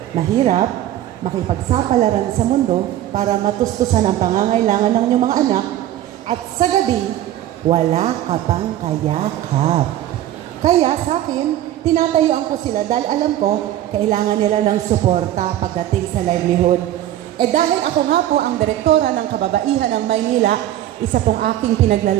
Mahirap makipagsapalaran sa mundo para matustusan ang pangangailangan ng inyong mga anak at sa gabi, wala ka pang kayakap. Kaya sa akin, tinatayuan ko sila dahil alam ko, kailangan nila ng suporta pagdating sa livelihood. Dahil ako nga po ang direktora ng Kababaihan ng Maynila, isa pong aking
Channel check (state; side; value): quieter; left; 13.0 dB